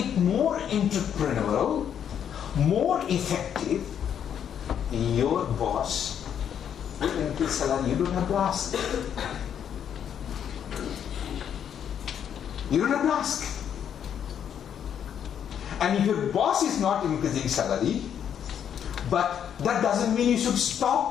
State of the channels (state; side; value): quieter; right; 8.8 dB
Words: more entrepreneurial, more effective. Your boss will increase salary. You don't have to ask. You don't have to ask. And if your boss is not increasing salary, but that doesn't mean you should